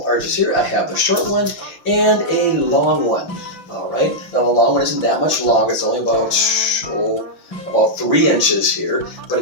arches here. I have the short one and a long one. All right, now the long one isn't that much long. It's only about 3 inches here, but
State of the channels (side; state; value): right; late; 5.9 ms